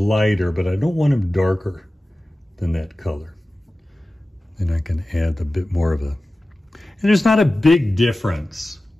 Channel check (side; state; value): both; normal; correlation 0.96